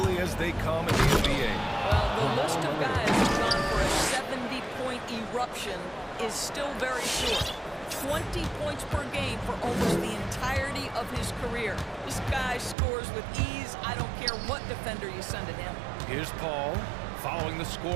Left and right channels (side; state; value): left; drops out; at 12.8 s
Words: as they come in the NBA. Well, the list of guys who've gone for a 70-point eruption is still very short. 20 points per game for almost the entirety of his career. This guy scores with ease. I don't care what defender you send at him. Here's Paul, following the